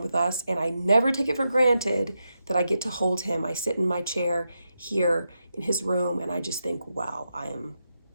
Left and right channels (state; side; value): inverted; both; correlation -0.86